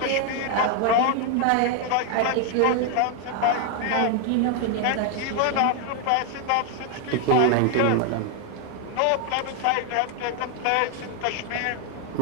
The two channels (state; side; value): different; both; correlation 0.00